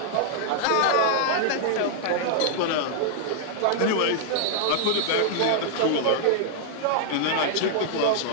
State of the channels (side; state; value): both; different; correlation -0.01